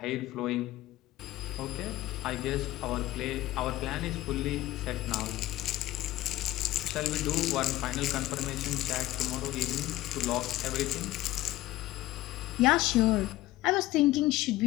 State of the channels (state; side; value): quieter; right; 16.5 dB